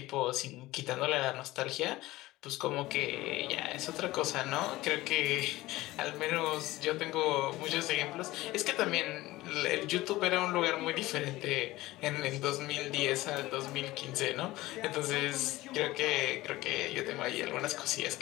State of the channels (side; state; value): right; quieter; 18.1 dB